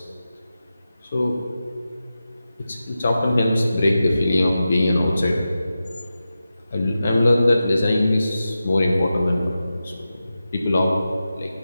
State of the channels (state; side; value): inverted; both; correlation -0.92